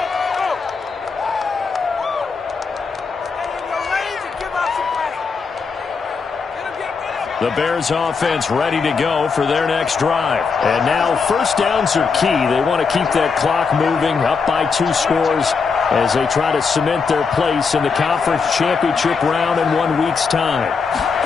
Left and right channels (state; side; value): quieter; right; 5.2 dB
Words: The Bears offense ready to go for their next drive. And now first downs are key. They want to keep that clock moving, up by 2 scores as they try to cement their place in the conference championship round in 1 week's time.